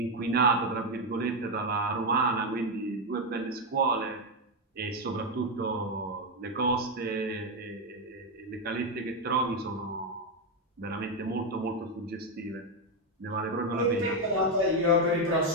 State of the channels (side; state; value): both; normal; correlation 0.06